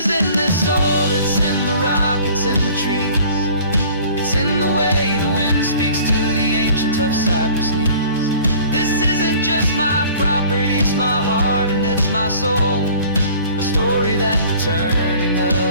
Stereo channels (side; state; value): both; inverted; correlation -0.49